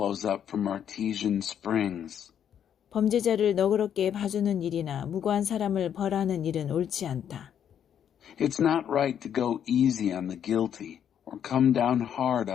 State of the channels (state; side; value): quieter; right; 9.1 dB